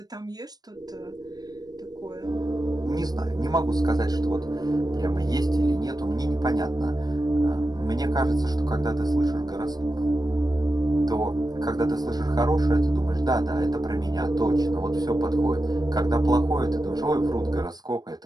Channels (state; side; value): late; left; 0.19 ms